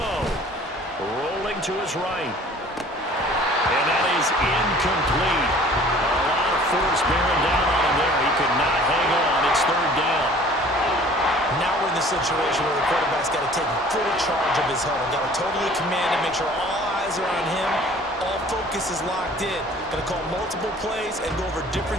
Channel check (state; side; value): normal; both; correlation 0.50